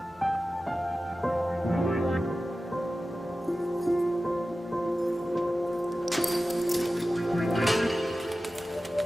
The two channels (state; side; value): normal; both; correlation 0.94